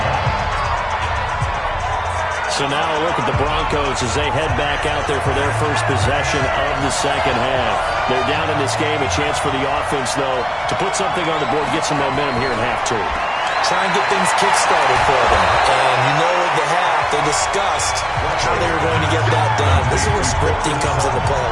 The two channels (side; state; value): both; identical; correlation 1.00